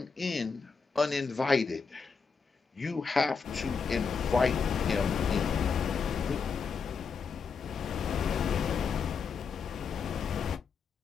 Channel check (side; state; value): right; quieter; 5.5 dB